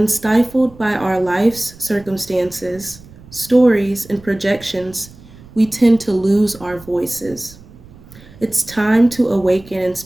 stifled by our life's circumstances, stories, and projections, we tend to lose our voices. It's time to awaken and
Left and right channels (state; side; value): noise; right; rumble, 21 dB below the sound